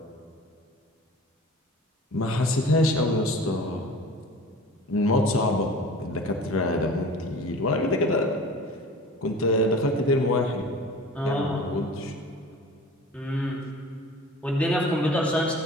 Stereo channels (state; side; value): normal; both; correlation 0.41